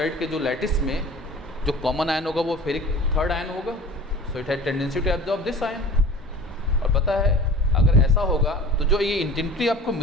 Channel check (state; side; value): normal; both; correlation 0.40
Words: के जो लैटिस में जो कॉमन आयन होगा वो फेरिक थर्ड आयन होगा। So it has tendency to absorb this ion. और पता है अगर ऐसा होगा तो जो ये इंटेंसिटी आपको